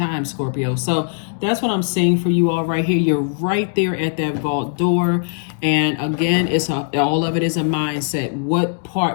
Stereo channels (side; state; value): right; silent; digital silence